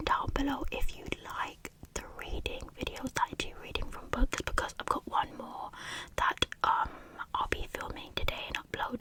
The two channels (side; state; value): both; identical; correlation 1.00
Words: down below if you like the reading videos that I do reading from books, because I've got one more that I'll be filming